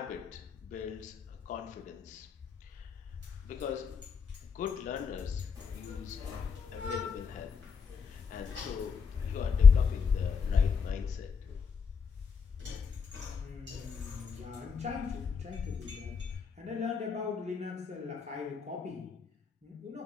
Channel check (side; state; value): right; quieter; 5.9 dB